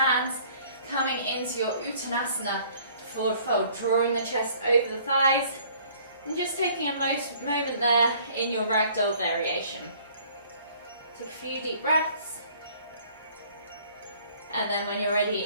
coming into your Uttanasana forward fold, drawing the chest over the thighs, and just taking a moment there in your ragdoll variation. Take a few deep breaths, and then when you're ready,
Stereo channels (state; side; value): inverted; both; correlation -0.57